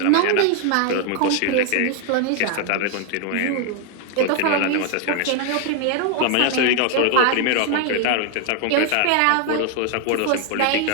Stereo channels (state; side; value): different; both; correlation 0.00